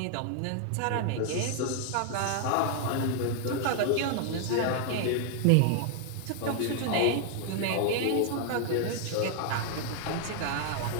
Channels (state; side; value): different; both; correlation 0.00